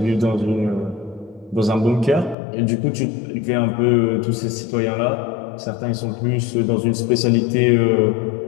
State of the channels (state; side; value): drops out; right; at 2.4 s